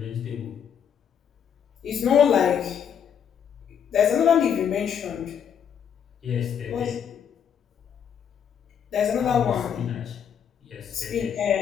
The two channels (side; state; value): right; quieter; 8.2 dB